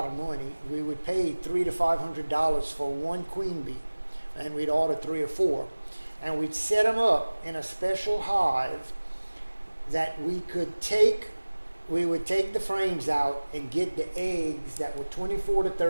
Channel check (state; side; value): inverted; both; correlation -1.00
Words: of money. We would pay $300 to $500 for one queen bee, and we'd order 3 or 4, and we'd set them up in a special hive that we could take we would take the frames out and get the eggs that were 24 to